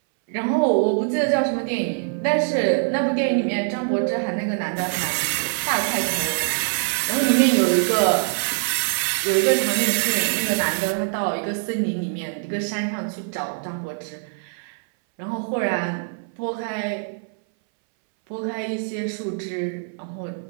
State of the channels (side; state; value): left; silent; 61 dB below the other